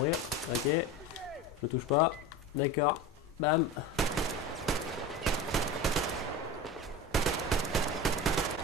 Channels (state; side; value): normal; both; correlation 0.29